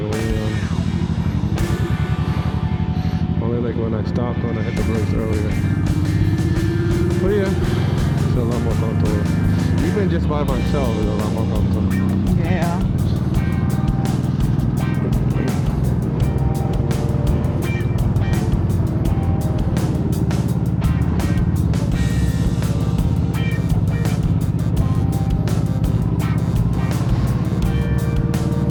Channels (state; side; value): identical; both; correlation 1.00